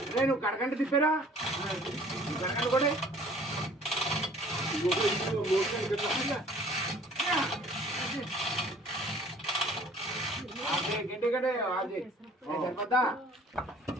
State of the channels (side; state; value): both; normal; correlation 0.53